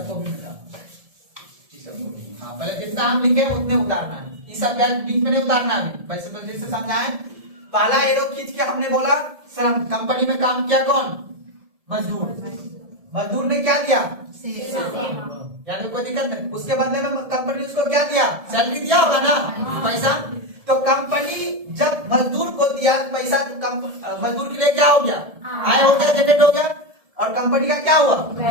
भी मिटाओ, हाँ पहले जितना हम लिखे उतने उतारना है, इस सब बीच में नहीं उतारना है। वैसे तो जैसे समझाए, पहला एरो खींच के हमने बोला श्रम, कंपनी में काम किया कौन? मजदूर। मजदूर ने क्या दिया? यानी कोई दिक्कत नहीं। उसके बदले में कंपनी उसको क्या दिया? सैलरी दिया होगा ना, पैसा। तो कंपनी जब मजदूर को दिया पैसा, तो मजदूर के लिए क्या हो गया? आय हो गया, जनरेट हो गया। और कंपनी का क्या हुआ?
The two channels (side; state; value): left; late; 1.7 ms